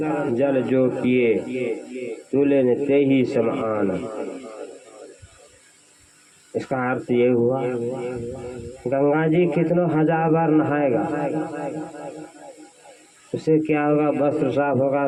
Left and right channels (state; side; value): identical; both; correlation 1.00